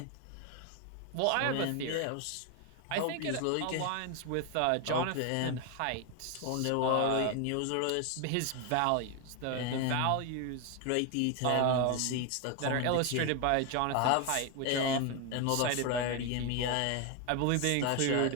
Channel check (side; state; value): both; different; correlation 0.01